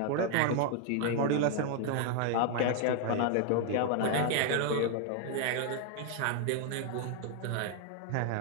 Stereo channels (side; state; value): both; different; correlation 0.00